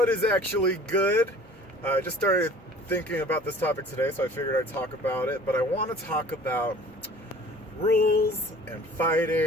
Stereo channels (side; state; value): both; normal; correlation 0.47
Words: is actually good? I just started thinking about this topic today, so I figured I'd talk about it. But I want to talk about rules and